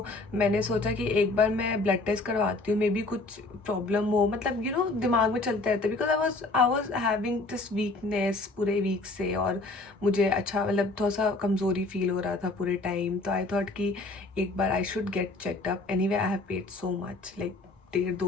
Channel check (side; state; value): right; quieter; 3.1 dB